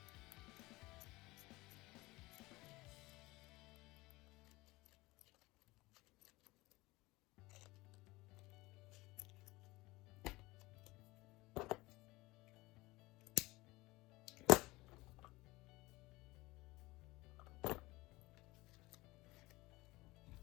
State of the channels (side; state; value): right; quieter; 20.9 dB